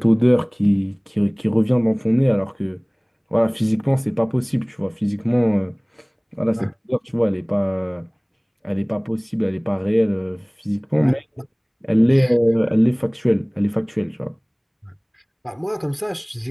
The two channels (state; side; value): identical; both; correlation 1.00